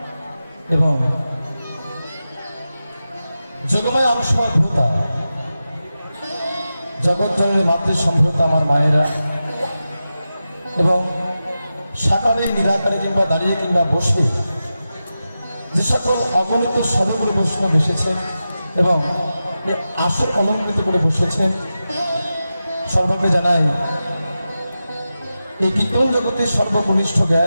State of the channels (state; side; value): inverted; both; correlation -0.92